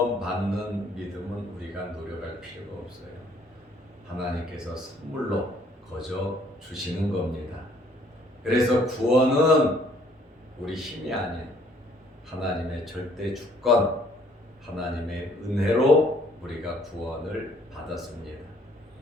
믿음은 우리가 노력할 필요가 없어요. 하나님께서 선물로 거저 주시는 겁니다. 그래서 구원은 우리 힘이 아닌 하나님의 절대 주권, 하나님의 은혜로 우리가 구원을 받았습니다.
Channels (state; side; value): normal; both; correlation 0.61